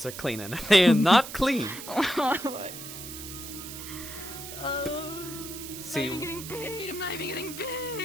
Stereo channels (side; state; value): right; noise; hiss, 11 dB below the sound